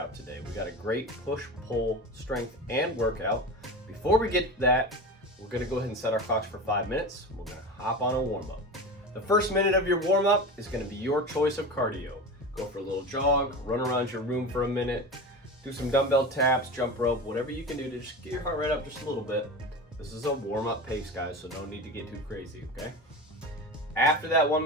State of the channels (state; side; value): normal; both; correlation 0.28